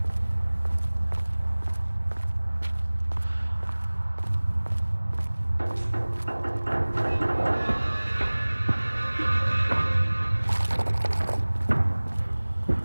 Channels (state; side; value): inverted; both; correlation -1.00